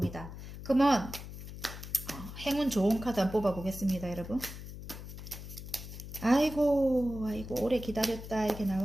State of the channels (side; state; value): left; noise; hum, 11 dB below the sound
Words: 그러면 행운 좋은 카드 한번 뽑아 보겠습니다. 여러분 아이고 오래 기다렸다 이렇게